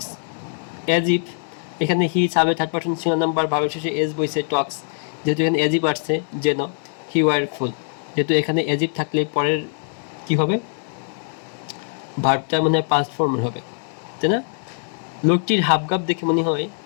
অ্যাজ ইফ, এখানে হি সাবে থার্ড পারসন সিঙ্গুলার নাম্বার, ভাবের শেষে এজ বইছে টক্স, যেহেতু এখানে অ্যাজ ইফ আসছে যেন, হি ওয়ার ফুল, যেহেতু এখানে অ্যাজ ইফ থাকলে পরের কি হবে, ভার্বটা মনে হয় পাস্ট ফর্মের হবে, তাই না। লোকটির হাবভাব দেখে মনে হয়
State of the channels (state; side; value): silent; right; 64 dB below the other